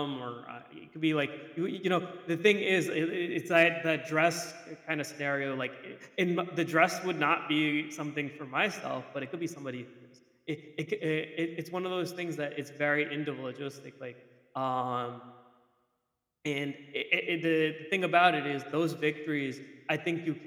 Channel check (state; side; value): identical; both; correlation 1.00